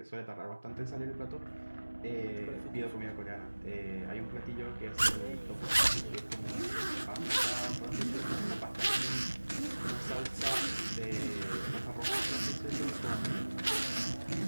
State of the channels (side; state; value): both; inverted; correlation -1.00